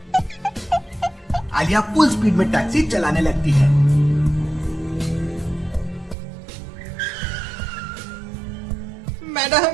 आलिया फुल स्पीड में टैक्सी चलाने लगती है।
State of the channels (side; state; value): left; drops out; at 6.2 s